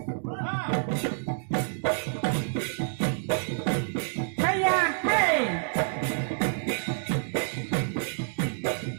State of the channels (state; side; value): silent; left; digital silence